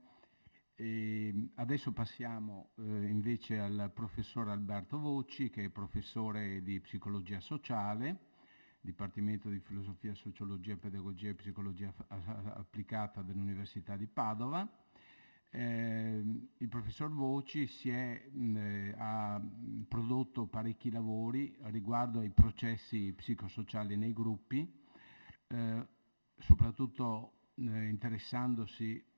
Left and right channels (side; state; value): both; inverted; correlation -1.00